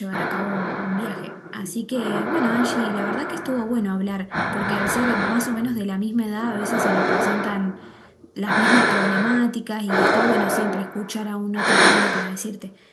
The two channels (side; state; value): both; identical; correlation 1.00